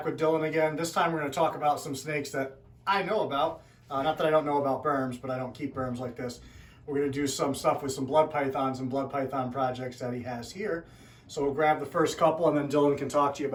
with Dillon again. This time we're going to talk about some snakes that I know about. Not that I don't know about berms, but I don't keep berms like this. We're going to do some stuff with some blood pythons and blood python projects that he has here. So we'll grab the first couple and then Dillon can talk to you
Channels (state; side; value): identical; both; correlation 1.00